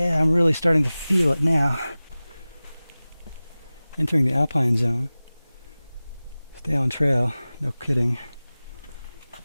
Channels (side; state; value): both; inverted; correlation -0.98